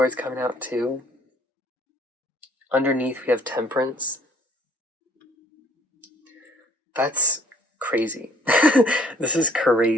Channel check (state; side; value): normal; both; correlation 0.59